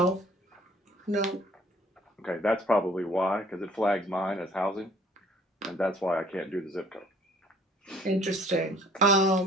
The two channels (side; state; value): both; normal; correlation 0.56